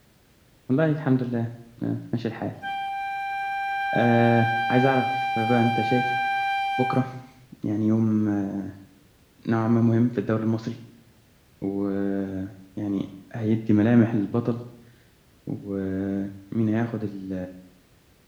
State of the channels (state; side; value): identical; both; correlation 1.00